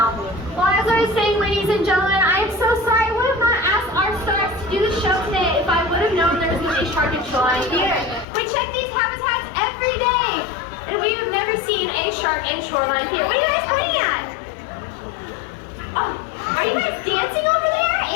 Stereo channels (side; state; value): right; drops out; at 8.2 s